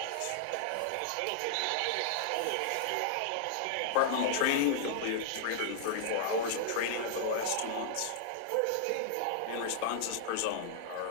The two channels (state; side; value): different; both; correlation -0.01